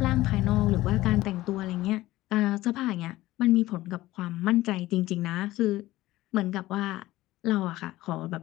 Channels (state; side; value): quieter; right; 16.9 dB